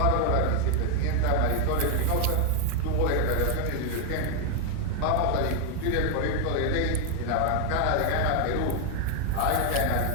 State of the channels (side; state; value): both; different; correlation 0.01